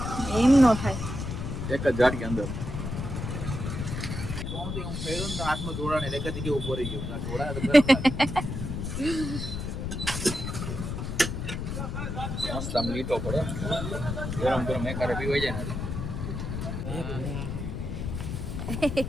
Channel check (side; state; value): left; noise; rumble, 4 dB below the sound